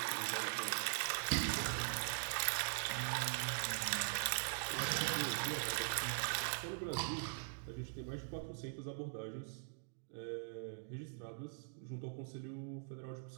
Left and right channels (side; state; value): left; silent; digital silence